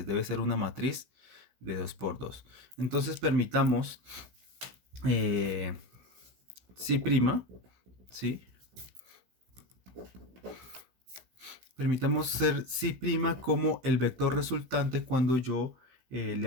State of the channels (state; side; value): late; left; 15 ms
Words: Debe ser una matriz de 2 por 2. Entonces permitamos eh, si', ¿sí? Permitamos ser si' como el vector resultante cuando yo le